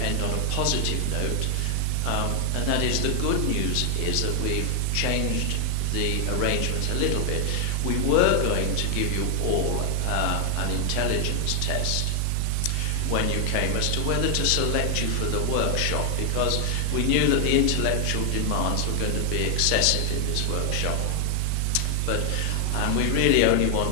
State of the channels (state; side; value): different; both; correlation 0.00